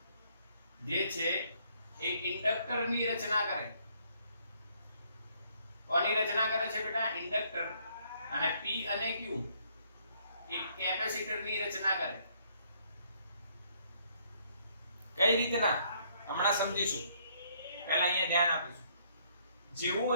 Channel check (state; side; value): inverted; both; correlation -0.67